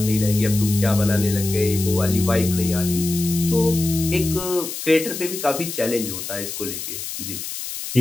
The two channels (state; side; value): noise; left; hiss, 7 dB below the sound